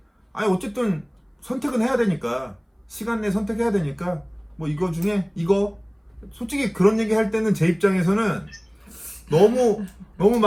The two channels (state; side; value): identical; both; correlation 1.00